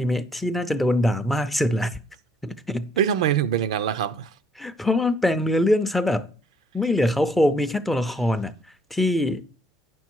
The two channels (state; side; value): normal; both; correlation 0.66